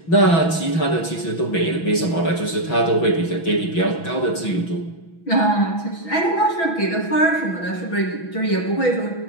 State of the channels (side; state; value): right; late; 6.1 ms